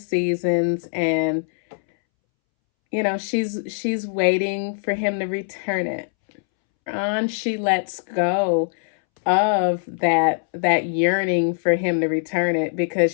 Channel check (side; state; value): right; silent; 64 dB below the other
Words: and she's waiting for him to return it. On, she lets go of that yearning for him to return it, because